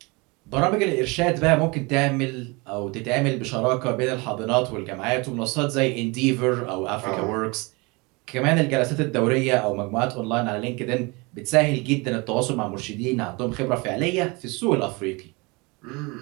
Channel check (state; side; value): quieter; left; 26.9 dB